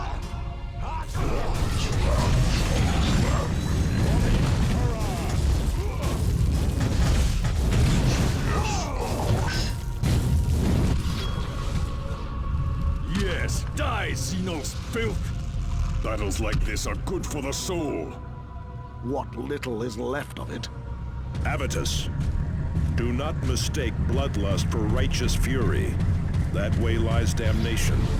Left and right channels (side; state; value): both; identical; correlation 1.00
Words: Yes, die, Xenos filth! Battles like this are good for the soul. What little is left of it. Avitus, do not mistake bloodlust for righteous fury. That way lies damnation.